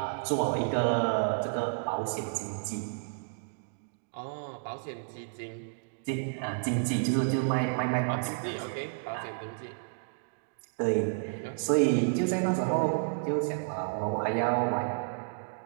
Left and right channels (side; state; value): left; silent; digital silence